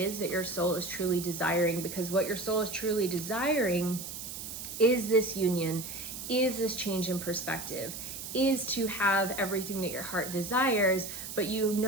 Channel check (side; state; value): right; noise; hiss, 8 dB below the sound